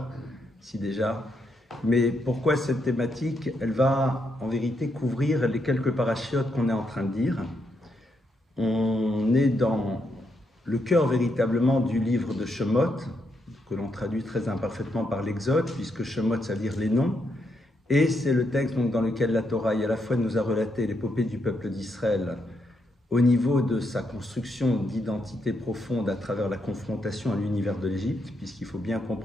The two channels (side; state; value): both; normal; correlation 0.79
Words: si déjà. Mais pourquoi cette thématique? Elle va, en vérité, couvrir les quelques parachiotes qu'on est en train de dire. On est dans le cœur, véritablement, du livre de Shemot, que l'on traduit très imparfaitement par l'Exode, puisque Shemot, ça veut dire les noms. Et c'est le texte donc, dans lequel la Torah, à la fois, nous a relaté l'épopée du peuple d'Israël au niveau de sa construction d'identité profonde à travers la confrontation à l'univers de l'Égypte, puisqu'il faut bien